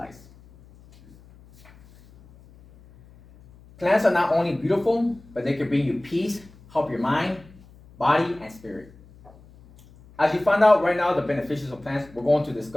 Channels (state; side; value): noise; left; hum, 24 dB below the sound